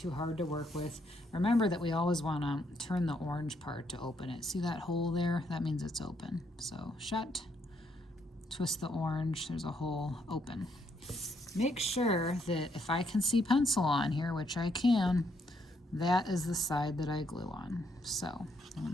hard to work with. Remember that we always wanna turn the orange part to open it. See that hole there? That means it's open. So shut, twist the orange, there's a hole, open. Make sure that if I can see pencil on here, which I can, that is the side that I glue on. So I'm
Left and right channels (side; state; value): both; normal; correlation 0.73